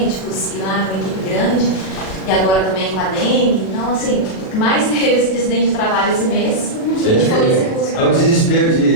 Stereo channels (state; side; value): late; right; 37 ms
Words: e lá uma equipe grande, e agora também com a dengue. Então, assim, o que mais teve esse acidente de trabalho esse mês, a gente foi esse curso. É o desespero